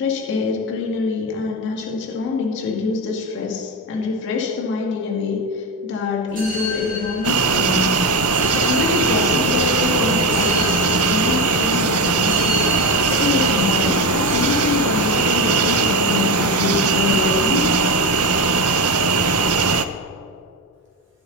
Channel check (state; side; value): normal; both; correlation 0.18